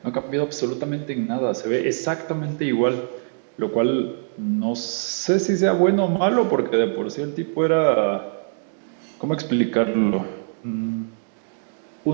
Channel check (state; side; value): silent; left; digital silence